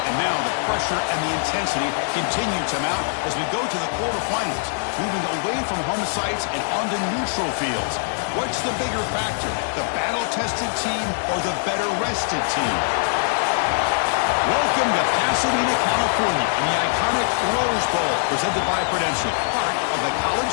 and now the pressure and the intensity continue to mount as we go to the quarterfinals, moving away from home sites and onto neutral fields. What's the bigger factor, the battle-tested team or the better-rested team? Welcome to Pasadena, California, in the iconic Rose Bowl, presented by Prudential, part of the college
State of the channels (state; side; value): silent; right; digital silence